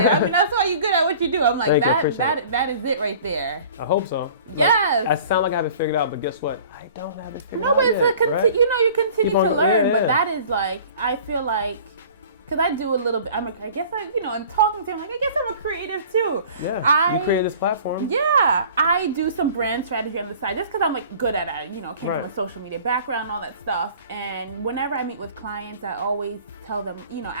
I mean, that's why you're good at what you do. I'm like, that is it right there. I hope so. Yes. I sound like I have it figured out, but guess what? I don't have it figured out. No, but it's you continue to learn. But that is like, I feel like, because I do a little bit, I guess and talking to him, like, I guess I'm a creative too. Yeah, you created this platform. Yeah, I do some brand strategy on the side just because I'm like good at it. Came from a social media background and all that stuff. And whenever I meet with clients, I always tell them,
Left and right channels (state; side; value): inverted; both; correlation -0.47